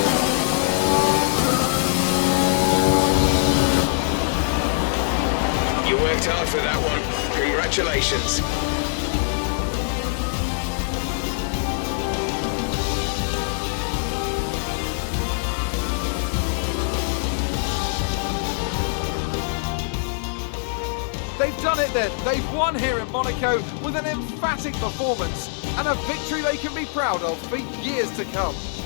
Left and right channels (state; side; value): silent; right; digital silence